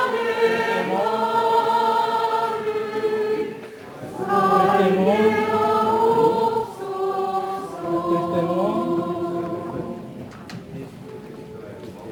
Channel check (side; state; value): both; identical; correlation 1.00